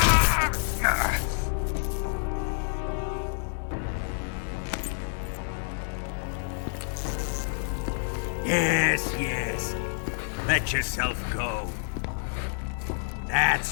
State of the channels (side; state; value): right; silent; 59 dB below the other